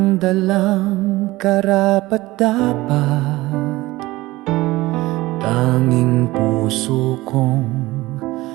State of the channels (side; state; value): left; quieter; 19.1 dB